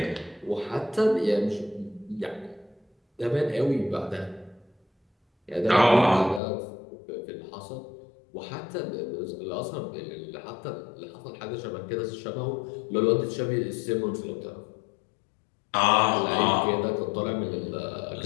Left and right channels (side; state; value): right; drops out; at 6.4 s